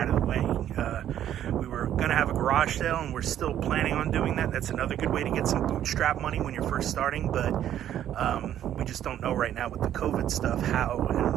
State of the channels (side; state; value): left; quieter; 11.0 dB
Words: of the way. We were going to have a garage sale, and we're still planning on doing that. That's another good way to get some bootstrap money when you're first starting, but we just don't know right now with the COVID stuff how